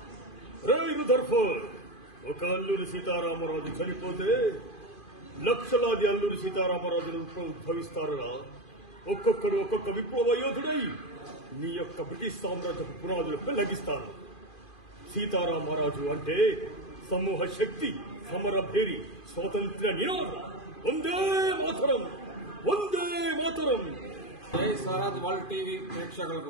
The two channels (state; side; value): late; right; 2.5 ms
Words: ఒక అల్లూరి సీతారామరాజు చనిపోతే లక్షలాది అల్లూరి సీతారామరాజులు ఉద్భవిస్తారురా. ఒక్కొక్కడు ఒక్కొక్క విప్లవ యోధుడై నీ యొక్క బ్రిటిష్ సామ్రాజ్యపు పునాదులు పెళ్లగిస్తారు. సీతారామరాజు అంటే సమూహ శక్తి, సమరభేరి, స్వాతంత్ర్య నినాదం. వందే మాతరం, వందే మాతరం. జై స్వరాజ్ వరల్డ్ టీవీ